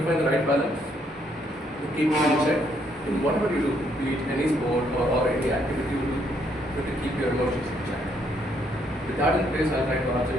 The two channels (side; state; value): both; normal; correlation 0.71